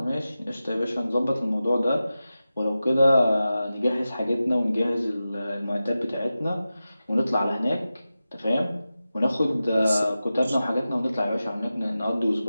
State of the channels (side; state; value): both; inverted; correlation -0.94